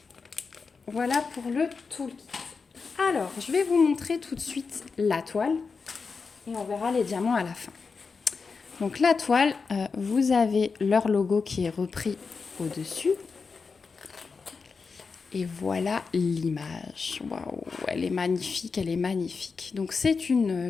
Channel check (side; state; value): right; quieter; 4.9 dB